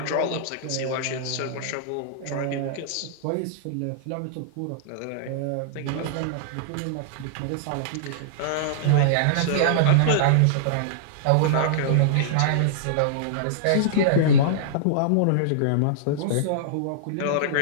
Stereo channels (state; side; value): different; both; correlation -0.02